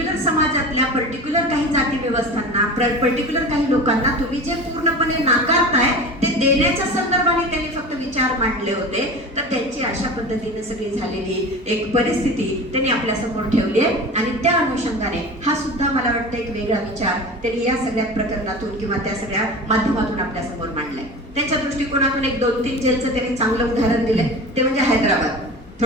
समाजातल्या पर्टिक्युलर काही जाती व्यवस्थांना, पर्टिक्युलर काही लोकांना तुम्ही जे पूर्णपणे नाकारताय ते देण्याच्या संदर्भाने त्यांनी फक्त विचार मांडले होते. तर त्यांची अशा पद्धतीने सगळी झालेली एक परिस्थिती त्यांनी आपल्या समोर ठेवली आहे. आणि त्या अनुषंगाने हा सुद्धा मला वाटतं एक वेगळा विचार त्यांनी या सगळ्या प्रकरणातून किंवा त्या सगळ्या माध्यमातून आपल्या समोर मांडलाय. त्यांच्या दृष्टिकोनातून एक 2-3 जेलचं त्यांनी चांगलं उदाहरण दिलंय, ते म्हणजे हैदराबाद.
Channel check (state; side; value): normal; both; correlation 0.33